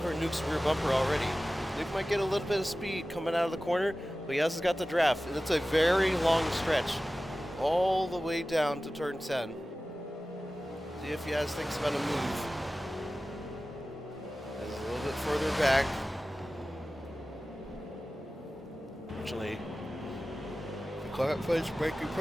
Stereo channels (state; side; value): normal; both; correlation 0.96